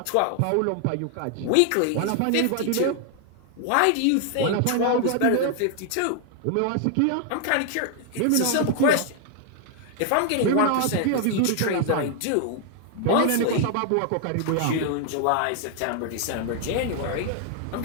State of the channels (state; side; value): different; both; correlation 0.00